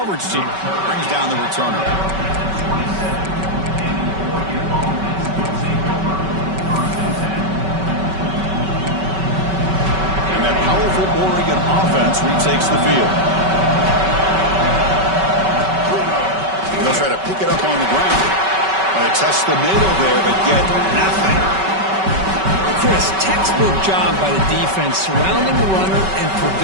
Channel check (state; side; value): late; left; 5.3 ms